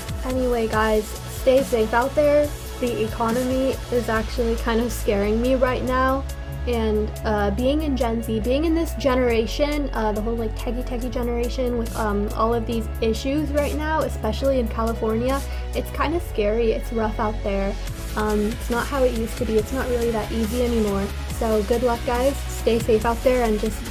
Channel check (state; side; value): identical; both; correlation 1.00